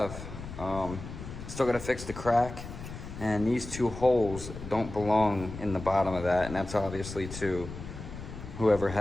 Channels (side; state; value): left; noise; rumble, 11 dB below the sound